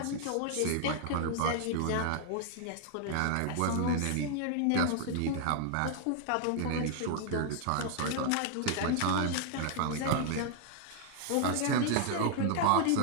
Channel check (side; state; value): both; different; correlation 0.00